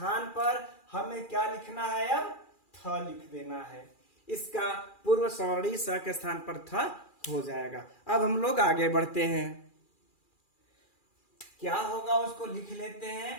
पर हमें क्या लिखना है, अब थ लिख देना है। इसका पूर्व सवर्णी स के स्थान पर थ हो जाएगा। अब हम लोग आगे बढ़ते हैं, क्या होगा उसको लिख लेते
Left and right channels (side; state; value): right; late; 2.4 ms